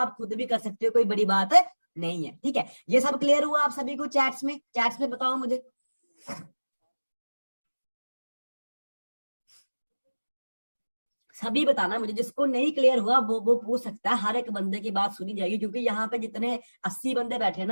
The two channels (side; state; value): both; inverted; correlation -1.00